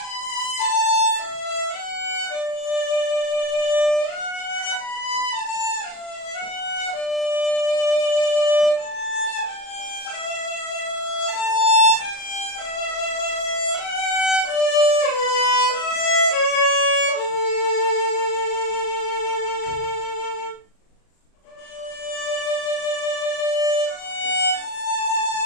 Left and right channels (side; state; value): right; late; 37 ms